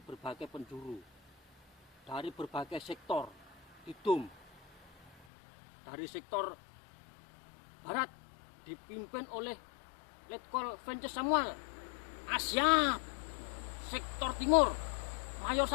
penjuru, dari berbagai sektor, didum. Dari sektor barat dipimpin oleh Letkol Vences Samuel, siap. Sektor timur Mayor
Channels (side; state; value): right; drops out; at 5.2 s